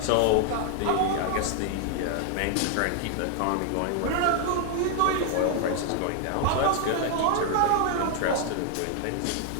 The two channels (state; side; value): different; both; correlation 0.00